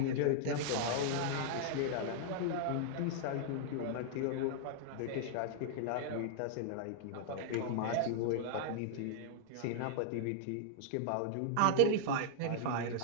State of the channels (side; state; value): both; different; correlation -0.01